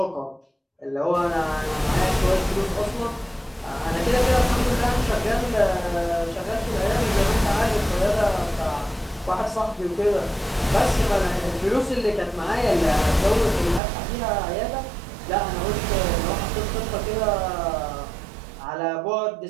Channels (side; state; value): left; drops out; at 13.8 s